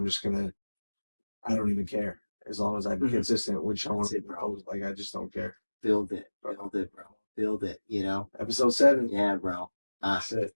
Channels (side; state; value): both; inverted; correlation -1.00